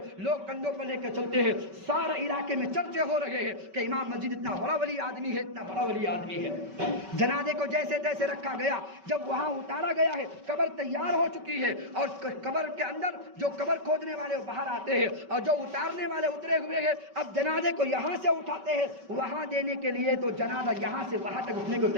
لوگ کندھوں پر لے کے چلتے ہیں، سارے علاقے میں چرچے ہو رہے ہیں کہ امام مسجد اتنا بڑا ولی آدمی ہے، اتنا بڑا ولی آدمی ہے۔ جنازے کو جیسے تیسے رکھا گیا، جب وہاں اتارا گیا ہے، قبر تیار ہو چکی ہے، اور قبر کے اندر جو قبر کھودنے والے باہر آتے ہیں اور جو اتارنے والے اترے ہوئے ہیں، اب جنازے کو یہاں سے اٹھاتے ہیں وہاں دینے کے لیے، تو جنازہ یہاں سے وہاں تک اٹھنے کو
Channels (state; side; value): late; left; 5.2 ms